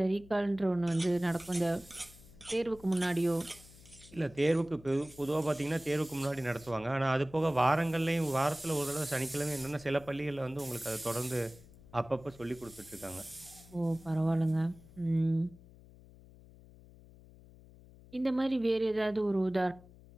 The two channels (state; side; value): noise; left; hum, 22 dB below the sound